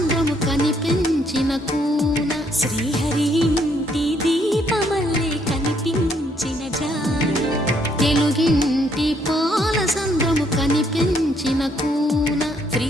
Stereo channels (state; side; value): normal; both; correlation 0.70